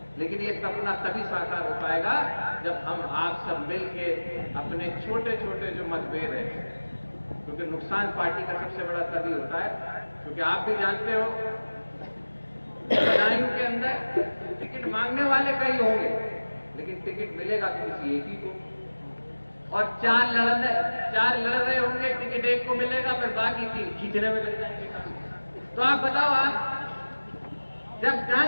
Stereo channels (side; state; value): both; inverted; correlation -1.00